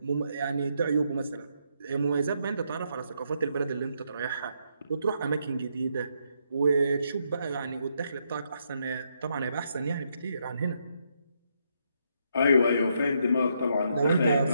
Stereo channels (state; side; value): inverted; both; correlation -0.77